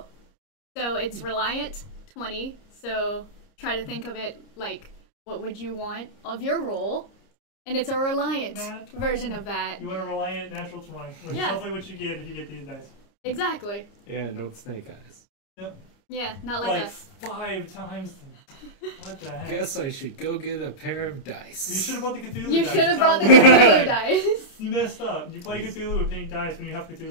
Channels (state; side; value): late; right; 30 ms